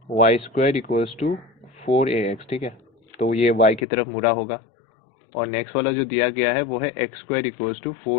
y² equals to 4ax, ठीक है, तो ये y की तरफ मुड़ा होगा, और नेक्स्ट वाला जो दिया गया है वो है x² इक्वल्स टू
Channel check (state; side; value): drops out; right; at 3.9 s